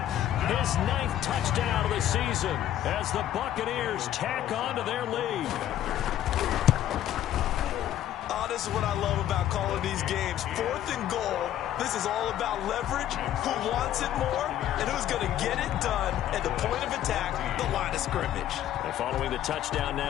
his 9th touchdown of the season as the Buccaneers tack on to their lead. Oh, this is what I love about calling these games. 4th and goal. This is all about leverage, who wants it more, and who's going to get it done at the point of attack, the line of scrimmage. And following the touchdown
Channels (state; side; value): quieter; right; 11.9 dB